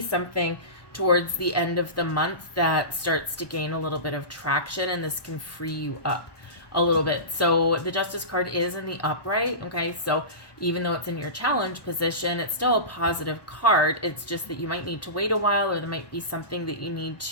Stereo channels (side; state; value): right; late; 1.1 ms